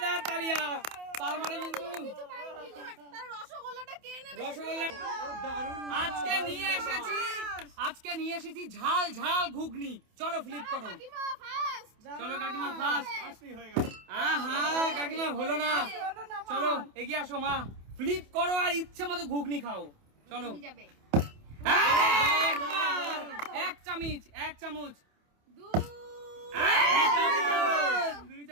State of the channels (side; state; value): left; late; 28 ms